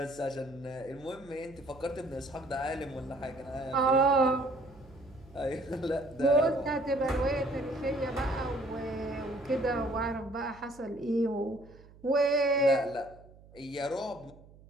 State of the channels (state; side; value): noise; right; hum, 23 dB below the sound